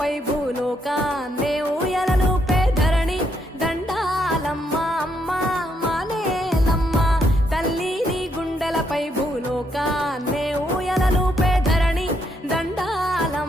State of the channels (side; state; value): both; normal; correlation 0.76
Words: గుండెలపై భూలోకాన్నే ఊయలలుపే ధరణి దండాలమ్మ అమ్మ మానేలమ్మ తల్లి నీ గుండెలపై భూలోకాన్నే ఊయలలుపే ధరణి